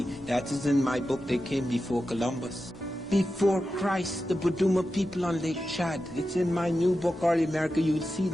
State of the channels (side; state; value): both; normal; correlation 0.91